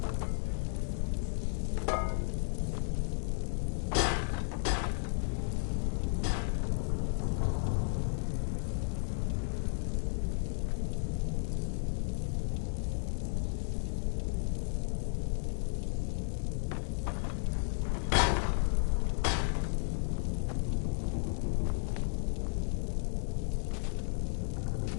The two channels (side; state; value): right; silent; digital silence